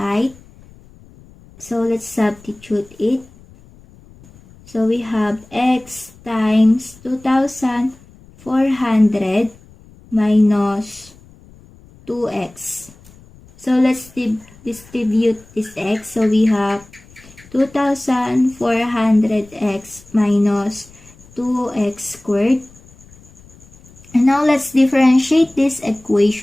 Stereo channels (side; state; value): left; noise; rumble, 24 dB below the sound